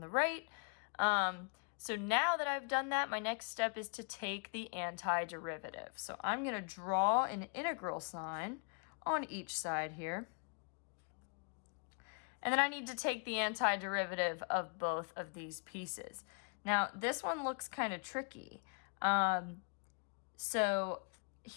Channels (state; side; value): quieter; right; 39.9 dB